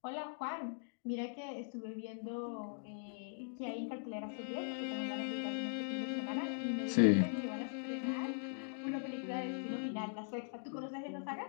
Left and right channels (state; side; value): silent; right; digital silence